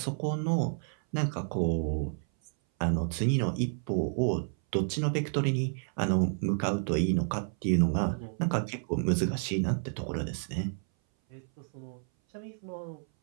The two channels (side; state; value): left; silent; 57 dB below the other